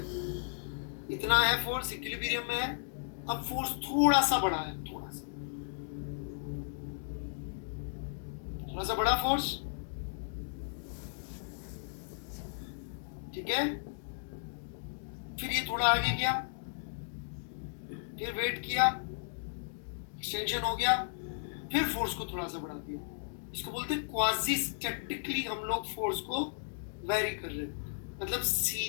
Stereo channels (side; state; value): right; silent; digital silence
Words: इतना है, फोर्स इक्विलिब्रियम में है, अब फोर्स थोड़ा सा बढ़ा है, थोड़ा सा बड़ा फोर्स, ठीक है? फिर ये थोड़ा आगे गया, फिर वेट किया, एक्सटेंशन हो गया, फिर फोर्स को थोड़ा सा बढ़ा दिया। इसको बोलते हैं क्वाजी स्टैटिकली हम लोग फोर्स को वेरी कर रहे हैं, मतलब